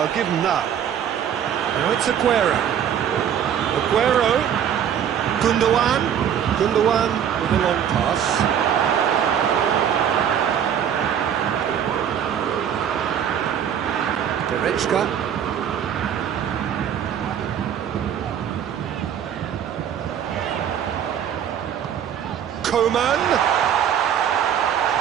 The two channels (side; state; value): left; quieter; 9.0 dB